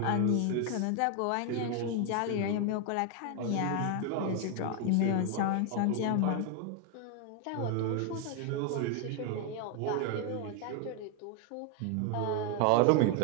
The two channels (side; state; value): both; different; correlation 0.01